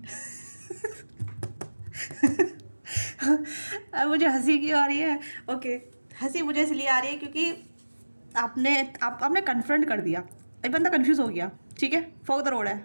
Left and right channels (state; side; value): inverted; both; correlation -1.00